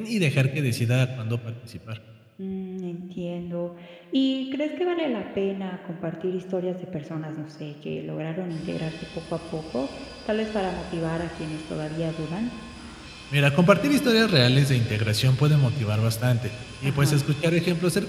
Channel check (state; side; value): identical; both; correlation 1.00